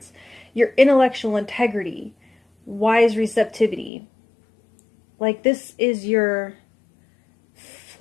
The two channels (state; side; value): drops out; right; at 3.9 s